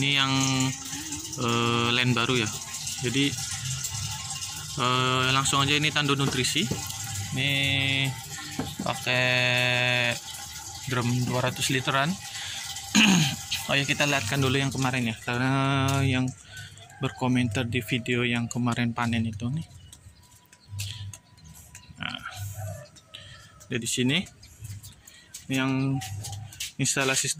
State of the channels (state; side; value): identical; both; correlation 1.00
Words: Ini yang line baru ya. Jadi langsung aja ini tandon nutrisi. Ini pakai drum 200 literan. Oh ya, kita lihatkan dulu yang kemarin ya, karena yang berkomentar di video yang kemarin panen itu nih. Nah, dari sini ini yang instalasi